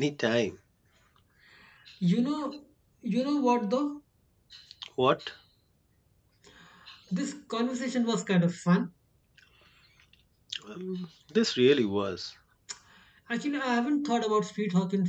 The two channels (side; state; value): both; identical; correlation 1.00